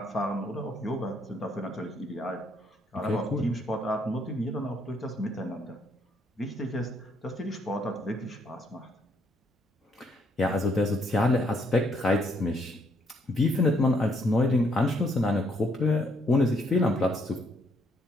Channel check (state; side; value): normal; both; correlation 0.70